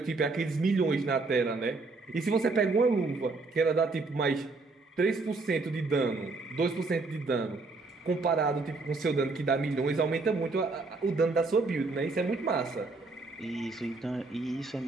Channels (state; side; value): quieter; left; 3.7 dB